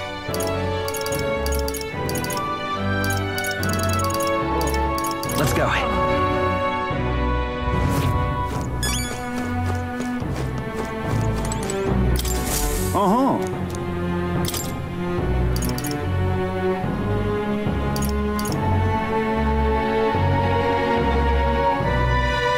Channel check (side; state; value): both; identical; correlation 1.00